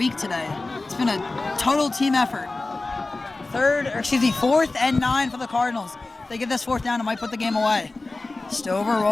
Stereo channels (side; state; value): right; quieter; 3.3 dB